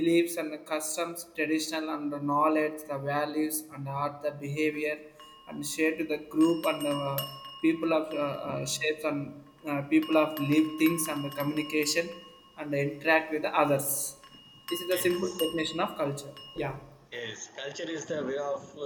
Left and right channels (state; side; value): identical; both; correlation 1.00